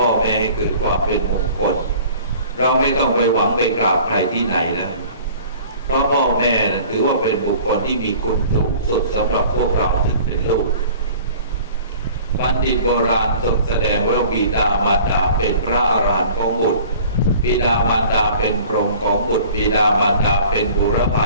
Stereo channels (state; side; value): inverted; both; correlation -0.47